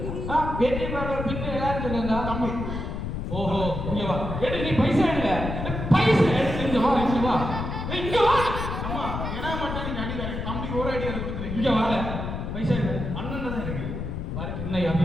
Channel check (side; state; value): left; noise; rumble, 4 dB below the sound